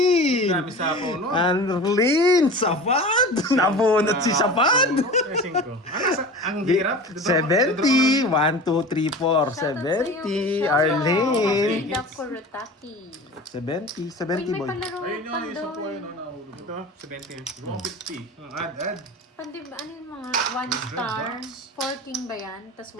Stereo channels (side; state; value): both; normal; correlation 0.35